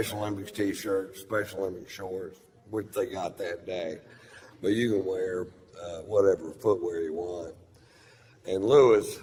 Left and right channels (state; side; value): identical; both; correlation 1.00